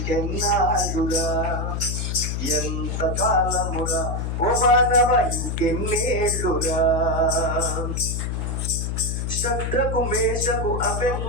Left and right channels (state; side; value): noise; left; hum, 2 dB below the sound